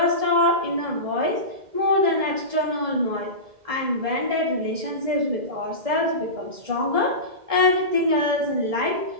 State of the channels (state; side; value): late; left; 2.0 ms